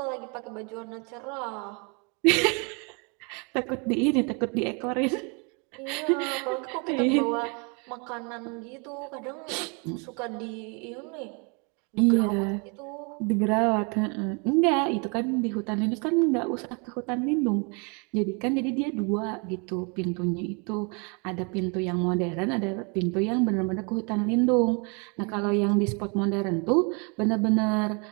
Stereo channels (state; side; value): quieter; left; 33.9 dB